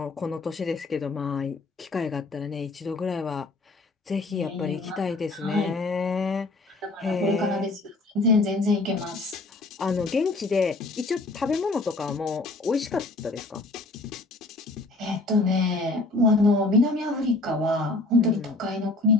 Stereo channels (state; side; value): quieter; right; 3.1 dB